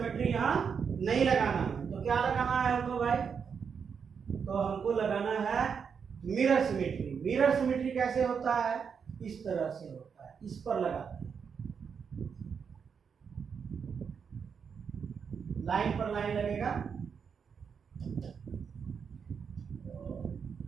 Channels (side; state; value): left; quieter; 6.5 dB